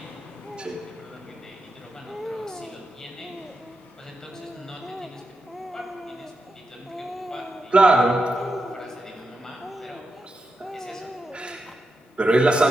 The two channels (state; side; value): normal; both; correlation 0.87